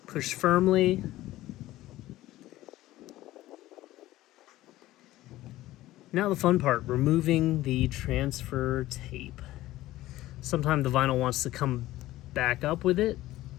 push firmly. Now the fun part, removing the transfer tape. Sometimes the vinyl wants to come back up with it.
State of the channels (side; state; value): right; quieter; 16.1 dB